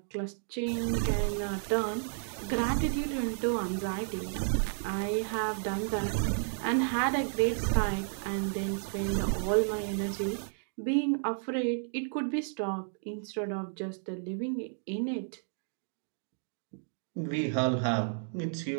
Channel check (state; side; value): silent; left; digital silence